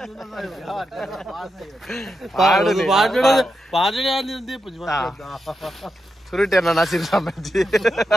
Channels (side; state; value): both; normal; correlation 0.87